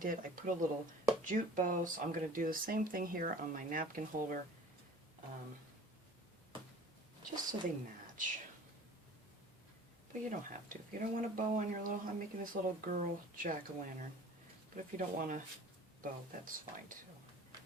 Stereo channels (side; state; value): both; normal; correlation 0.45